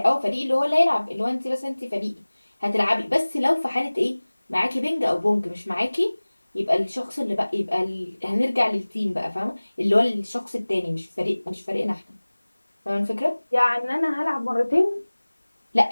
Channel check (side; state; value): both; inverted; correlation -1.00